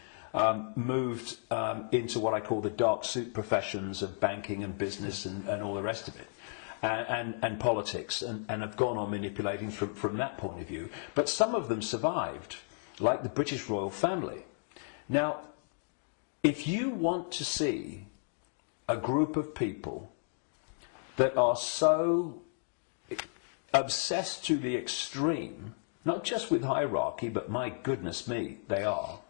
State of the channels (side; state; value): right; silent; digital silence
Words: moved into what I call the dark suit professions of banking and business and all the rest of it, and politics, and have gone on manipulating from that point of view. But some of them survived, like the British royal family. Now, if you want to see a group of people that are so obsessed to the extreme, not just with hierarchy, but my goodness me, they are.